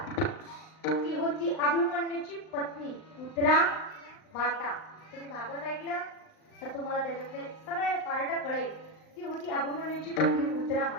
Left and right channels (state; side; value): late; right; 39 ms